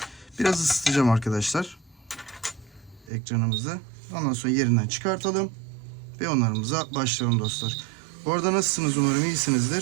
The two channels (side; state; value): left; drops out; at 3.1 s